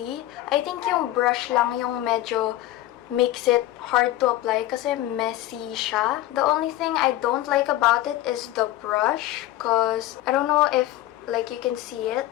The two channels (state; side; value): quieter; right; 15.1 dB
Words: I think yung brush lang yung medyo makes it hard to apply kasi messy siya. The only thing I don't like about it is the brush because I don't know if like you can see it,